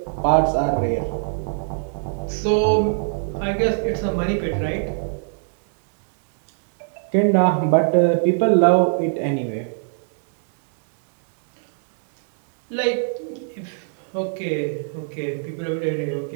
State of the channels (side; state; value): left; silent; digital silence